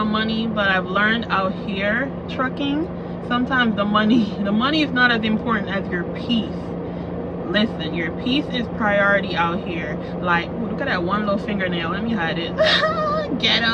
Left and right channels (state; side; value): identical; both; correlation 1.00